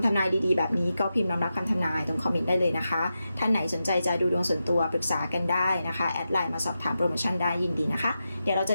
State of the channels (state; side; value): inverted; both; correlation -0.90